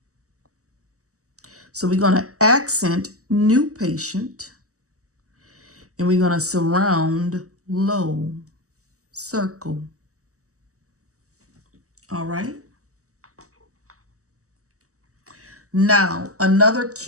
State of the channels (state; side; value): late; left; 0.66 ms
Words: So we're going to accent new patient, and we're going to surround low, circle. All right. Now, another